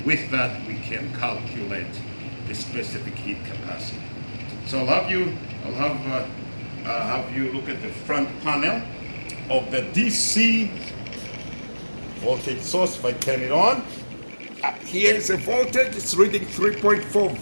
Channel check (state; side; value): inverted; both; correlation -1.00